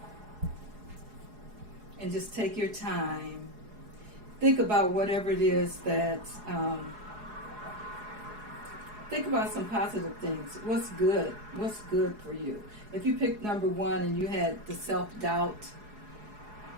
and just take your time, think about whatever it is that, think about some positive things. What's good for you? If you picked number 1 and you had the self-doubt,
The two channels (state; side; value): late; left; 4.8 ms